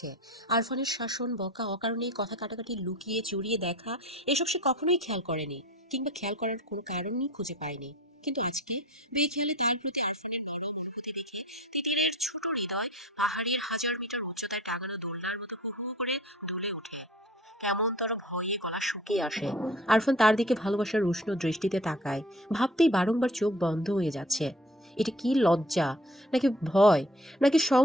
আরফানের শাসন, বকা, অকারণেই কথা কাটাকাটি, লুকিয়ে চুরিয়ে দেখা, এসব সে কখনোই খেয়াল করেনি, কিংবা খেয়াল করার কোনো কারণই খুঁজে পায়নি। কিন্তু আজকে বেখেয়ালে তার প্রতি আরফানের ভালো অনুভূতি দেখে তিতিরের ছোট হৃদয় পাহাড়ের 1000 মিটার উচ্চতায় টাঙানো দোলনার মতো হু হু করে দুলে ওঠে। কেমনতর ভয়ে গলা শুকিয়ে আসে। আরফান তার দিকে ভালোবাসার উষ্ণ দৃষ্টিতে তাকায়। ভাবতেই বারংবার চোখ বন্ধ হয়ে যাচ্ছে। এটা কি লজ্জা, নাকি ভয়, নাকি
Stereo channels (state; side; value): normal; both; correlation 0.45